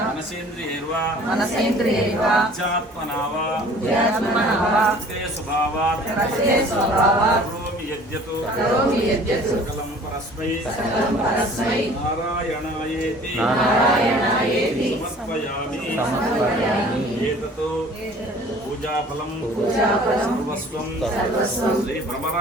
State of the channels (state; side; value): normal; both; correlation 0.50